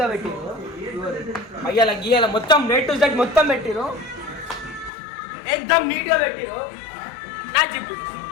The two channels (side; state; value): right; drops out; at 4.9 s